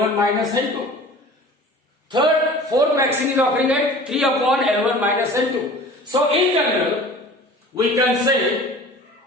minus n2. Fourth waxing is occurring at 3 upon n1 minus n2. So in general, we can say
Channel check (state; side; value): normal; both; correlation 0.43